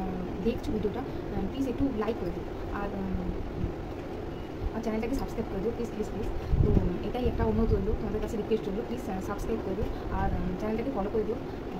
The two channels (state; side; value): identical; both; correlation 1.00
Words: দেখছো ভিডিওটা প্লিজ একটু লাইক করে দিও, আর চ্যানেলটাকে সাবস্ক্রাইব করে দিও প্লিজ প্লিজ প্লিজ। তো এটাই একটা অনুরোধ রইল, তোমাদের কাছে রিকোয়েস্ট রইল, প্লিজ সাবস্ক্রাইব করে দিও আর চ্যানেলটাকে ফলো করে দিও।